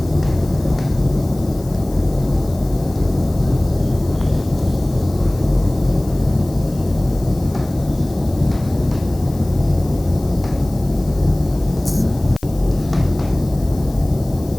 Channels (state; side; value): noise; left; hiss, 21 dB below the sound